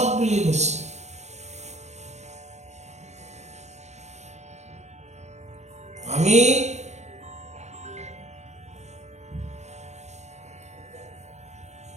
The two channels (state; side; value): late; left; 0.33 ms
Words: বুলি কৈছে। আমি